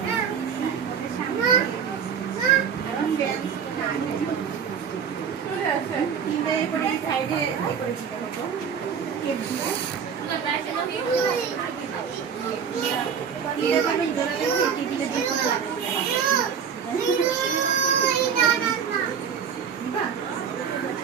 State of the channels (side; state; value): left; quieter; 7.2 dB